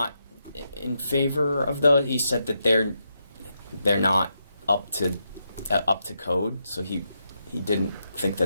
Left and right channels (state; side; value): inverted; both; correlation -0.83